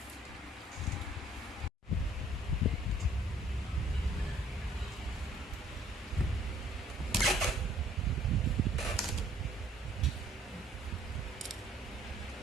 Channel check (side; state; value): both; normal; correlation 0.59